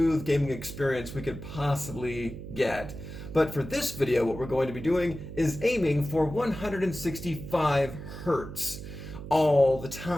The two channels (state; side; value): noise; right; hum, 11 dB below the sound